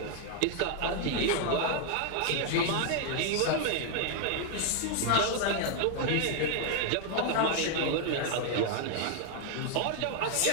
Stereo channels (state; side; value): different; both; correlation 0.00